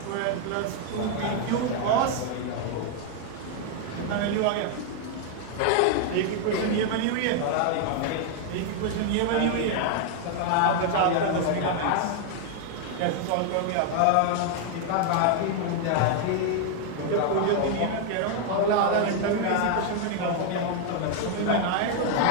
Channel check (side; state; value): both; different; correlation 0.00